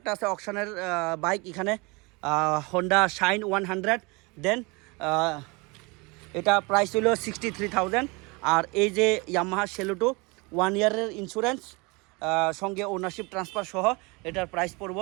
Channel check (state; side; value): quieter; left; 27.4 dB